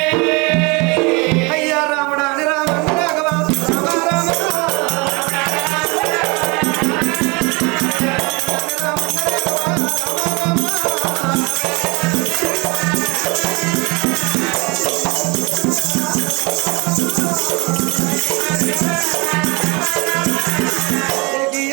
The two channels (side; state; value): left; quieter; 28.0 dB